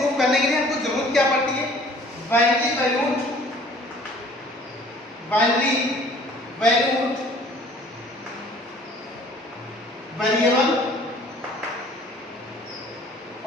करने के लिए हमको जरूरत क्या पड़ती है? बाइनरी वैल्यूड वेरिएबल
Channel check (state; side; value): normal; both; correlation 0.53